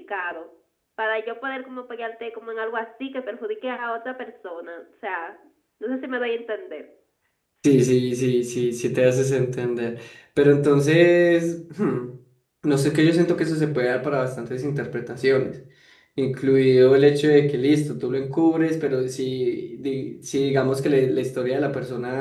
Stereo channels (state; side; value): identical; both; correlation 1.00